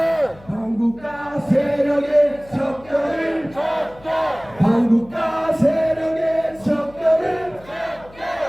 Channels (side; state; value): left; noise; hum, 23 dB below the sound